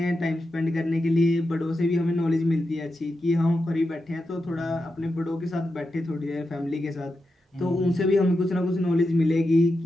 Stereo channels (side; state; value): both; normal; correlation 0.88